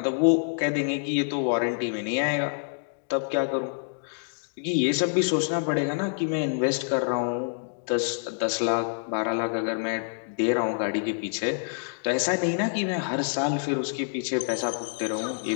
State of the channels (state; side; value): silent; right; digital silence